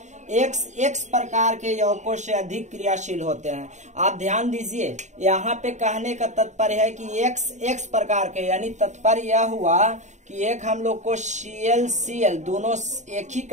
X प्रकार के यौगिकों से अधिक क्रियाशील होते हैं। आप ध्यान दीजिए, यहाँ पे कहने का तात्पर्य है कि X प्रकार के, यानी तात्पर्य यह हुआ कि एक हम लोग को Cl दोनों एक ही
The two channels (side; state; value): left; late; 0.34 ms